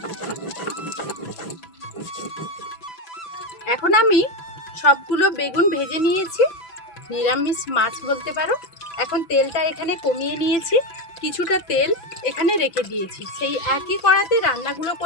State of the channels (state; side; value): late; right; 6.0 ms